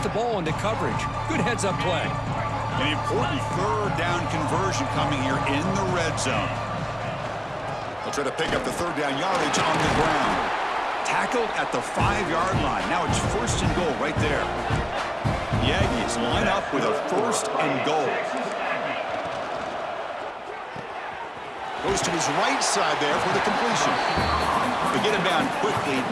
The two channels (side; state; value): both; identical; correlation 1.00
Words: ball into coverage. Good heads-up play. An important third down conversion coming here in the red zone. They'll try to pick up the third down yardage on the ground. Tackled at the 5-yard line. Now it's 1st and goal right there. The Aggies line up with a 1st and goal. Goes to his right side there for the completion. They get him down quickly.